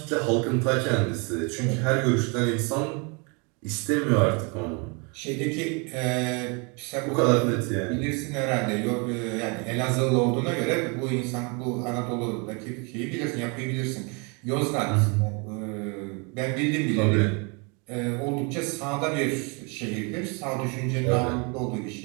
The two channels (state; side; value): quieter; left; 32.2 dB